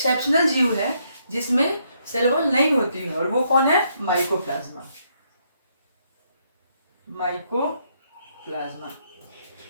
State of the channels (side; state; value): both; inverted; correlation -0.74